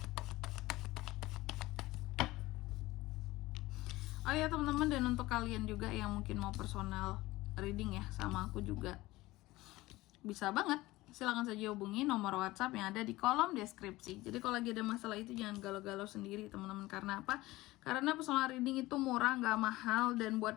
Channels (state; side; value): quieter; right; 18.8 dB